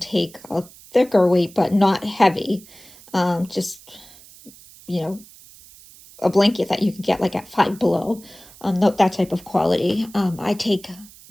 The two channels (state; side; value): noise; right; hiss, 22 dB below the sound